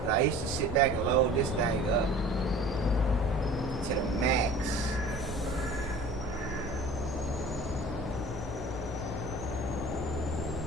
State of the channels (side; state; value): both; normal; correlation 0.43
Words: I used to sit back and load this thing up to the max.